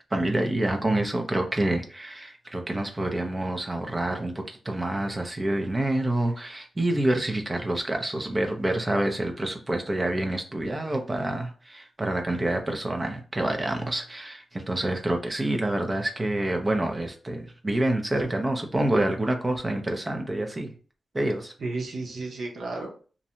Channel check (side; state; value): both; normal; correlation 0.95